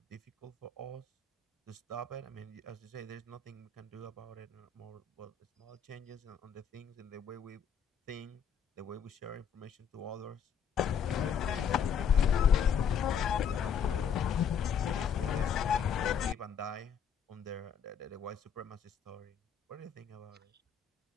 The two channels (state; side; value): quieter; right; 7.2 dB